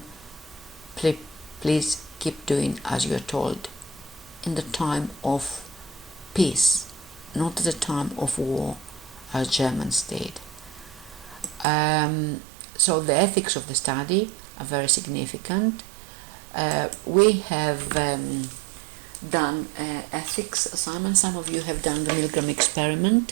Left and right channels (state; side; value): drops out; left; at 11.7 s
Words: please keep doing as you're told, in the time of peace, not at the time of war, as Germans did. So the ethics of the study are very significant. We have done ethics assignments. Some of you have done the Milgram